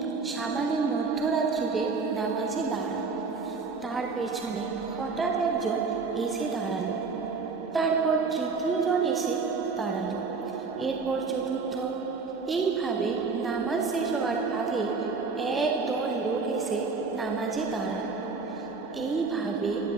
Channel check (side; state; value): left; quieter; 4.5 dB